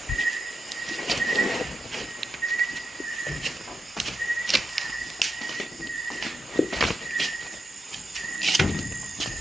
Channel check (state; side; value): normal; both; correlation 0.87